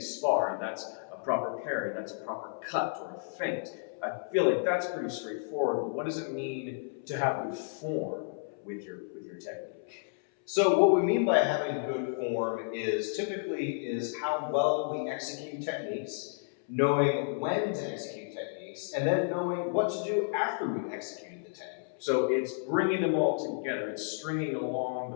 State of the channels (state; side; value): silent; right; 57 dB below the other